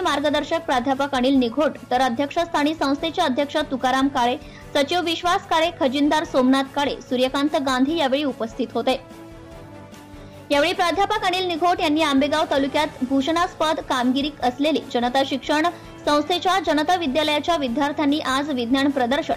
प्राध्यापक अनिल निघोट, तर अध्यक्षस्थानी संस्थेचे अध्यक्ष तुकाराम काळे, सचिव विश्वास काळे, खजिनदार सोमनाथ काळे, सूर्यकांत गांधी यावेळी उपस्थित होते। यावेळी प्राध्यापक अनिल निघोट यांनी आंबेगाव तालुक्यात भूषणास्पद कामगिरी असलेली जनता शिक्षण संस्थेच्या जनता विद्यालयाच्या विद्यार्थ्यांनी आज विज्ञान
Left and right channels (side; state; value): both; identical; correlation 1.00